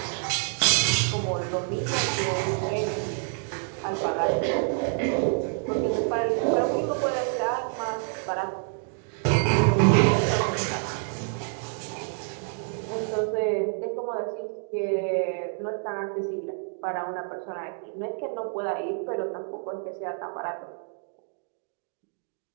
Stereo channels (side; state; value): left; silent; 56 dB below the other